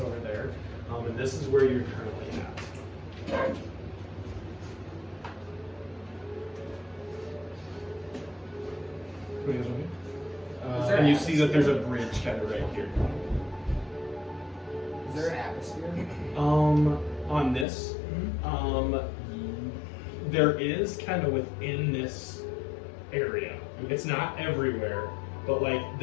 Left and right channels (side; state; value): right; drops out; at 17.7 s